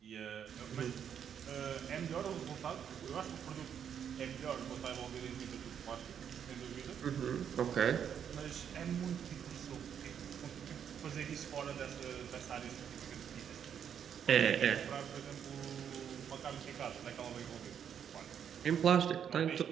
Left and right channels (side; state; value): left; quieter; 8.4 dB